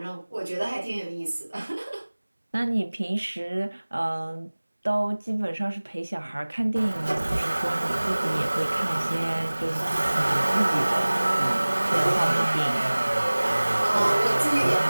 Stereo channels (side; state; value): both; inverted; correlation -1.00